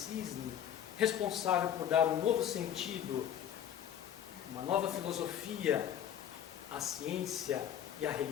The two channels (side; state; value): right; quieter; 9.8 dB